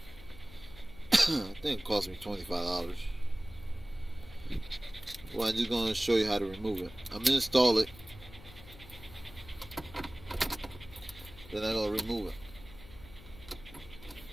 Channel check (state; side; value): noise; left; hum, 18 dB below the sound